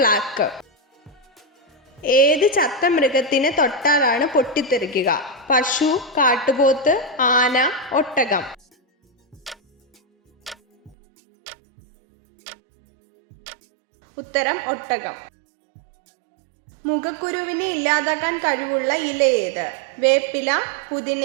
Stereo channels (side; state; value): left; drops out; at 11.0 s